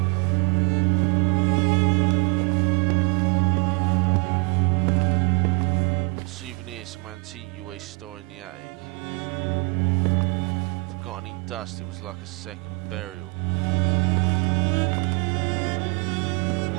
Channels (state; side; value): quieter; left; 30.6 dB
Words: Souvenir, some antique you always store in the attic. Forgotten in dust, it was like a second burial.